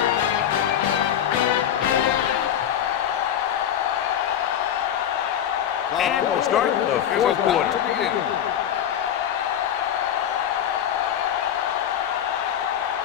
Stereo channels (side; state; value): right; quieter; 9.9 dB